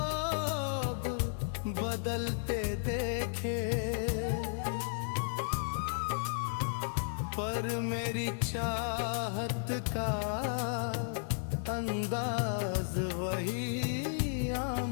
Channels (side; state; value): right; silent; 55 dB below the other